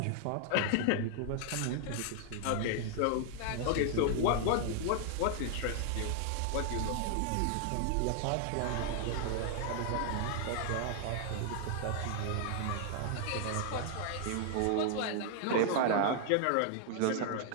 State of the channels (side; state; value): both; different; correlation 0.00